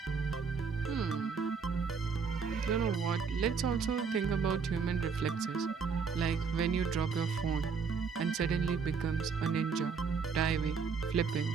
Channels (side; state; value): left; quieter; 5.6 dB